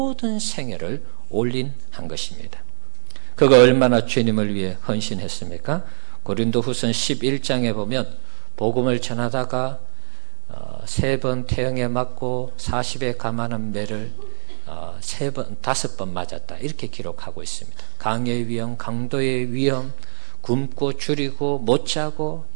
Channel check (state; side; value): silent; left; digital silence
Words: 생애를 올인한 것입니다. 그가 얼마나 주님을 위해 헌신했습니까? 고린도후서 11장에 보면 복음을 전하다가 3번 태형에 맞고 40에 감하는 매를 5번 맞았다 이렇게 기록하고 있습니다. 강의 위험, 강도의 위험, 굶고 줄이고 못 자고